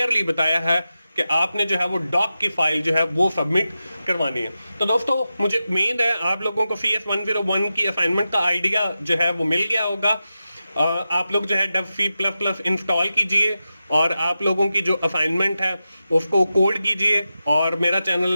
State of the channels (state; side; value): inverted; both; correlation -0.92